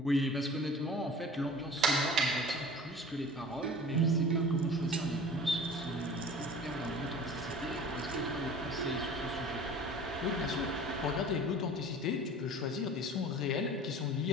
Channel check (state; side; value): normal; both; correlation 0.42